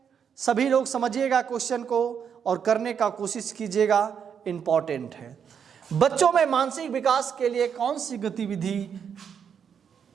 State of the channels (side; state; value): left; quieter; 7.5 dB